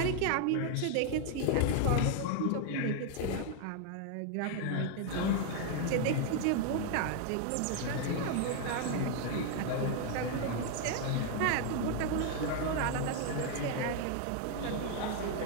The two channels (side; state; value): both; different; correlation 0.00